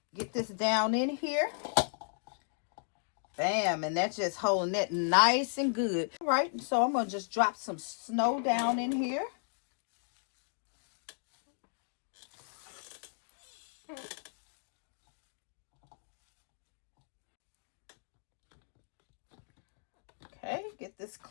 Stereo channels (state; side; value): silent; right; digital silence